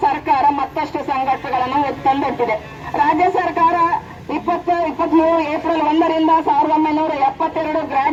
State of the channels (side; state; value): both; identical; correlation 1.00